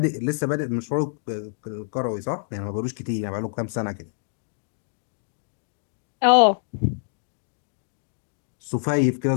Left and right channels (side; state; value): right; silent; digital silence